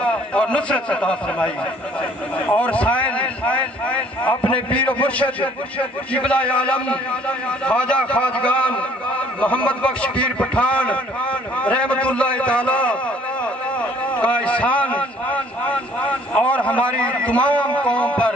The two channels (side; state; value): both; normal; correlation 0.58